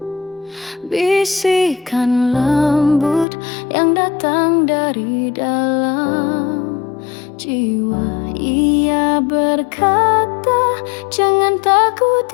bisikan lembut yang datang dari dalam jiwa. Ia berkata, jangan takut,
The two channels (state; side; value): drops out; right; at 3.2 s